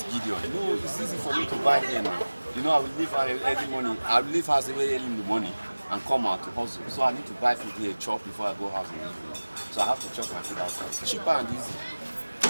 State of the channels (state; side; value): inverted; both; correlation -1.00